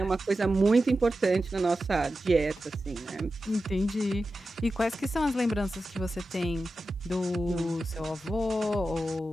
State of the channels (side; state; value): both; normal; correlation 0.92